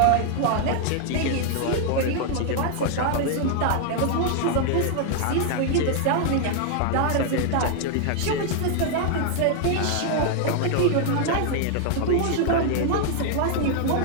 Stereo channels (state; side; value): different; both; correlation 0.00